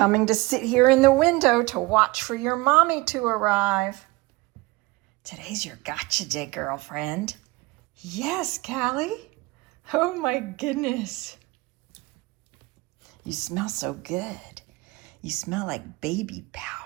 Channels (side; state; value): left; quieter; 22.2 dB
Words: to sit here in the window to watch for your mommy to arrive. Today's your gotcha day, girlfriend. Yes, Callie. Oh my goodness. You smell so good. You smell like baby